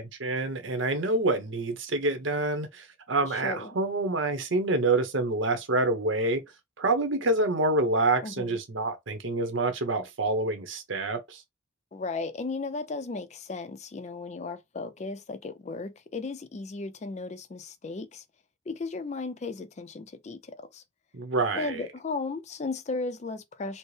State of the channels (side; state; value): both; normal; correlation -0.04